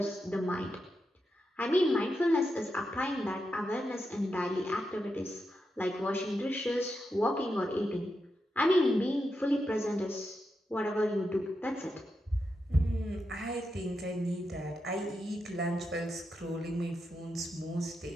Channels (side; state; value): both; normal; correlation 0.86